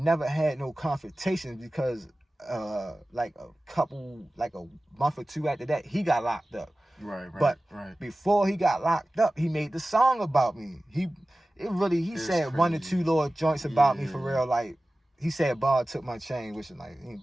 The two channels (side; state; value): both; normal; correlation 0.96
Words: never had no confrontations because, like, a month or two after that, he got locked up. But before he got locked up, he made the song about me. He said crazy. 1 or 2 little joints about me for real. Like, he said Ball took my chain, which is like,